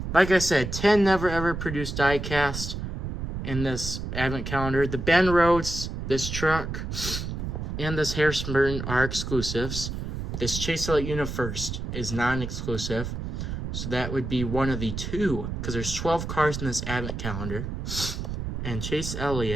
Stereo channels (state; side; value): noise; right; rumble, 5 dB below the sound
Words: Like I said, 10 never ever produced die cast in this advent calendar. The Ben Rhodes, this truck, and this Harrison Burton are exclusives. This Chase Elliott UniFirst is non-exclusive. So that would be one of the 2, because there's 12 cars in this advent calendar. And Chase